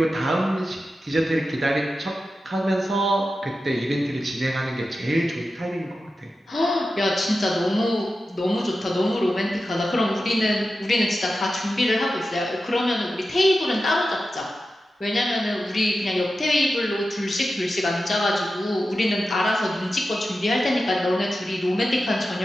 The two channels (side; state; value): both; normal; correlation 0.92